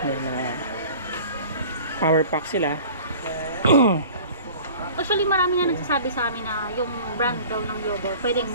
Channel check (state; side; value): inverted; both; correlation -0.43